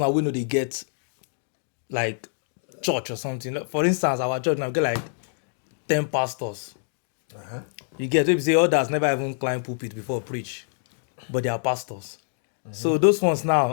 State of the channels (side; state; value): right; silent; digital silence